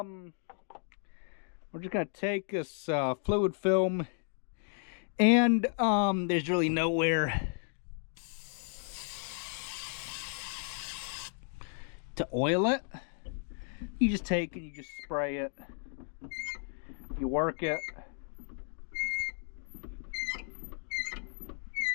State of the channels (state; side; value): silent; right; 55 dB below the other